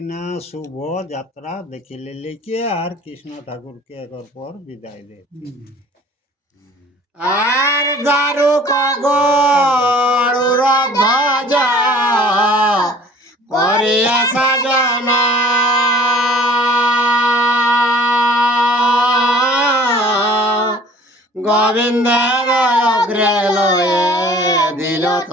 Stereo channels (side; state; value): both; normal; correlation 0.50